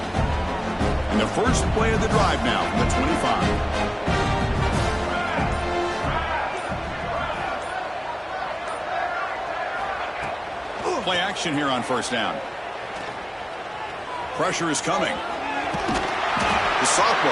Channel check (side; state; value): both; identical; correlation 1.00